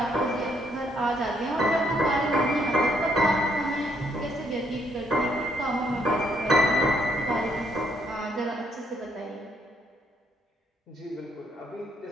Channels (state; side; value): normal; both; correlation 0.71